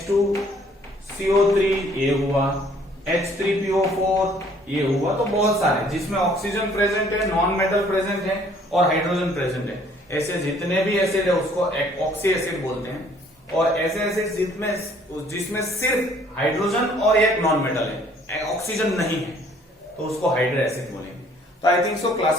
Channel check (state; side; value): normal; both; correlation 0.59